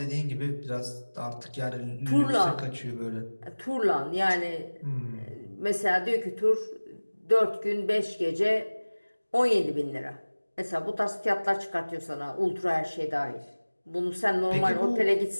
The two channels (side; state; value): both; inverted; correlation -1.00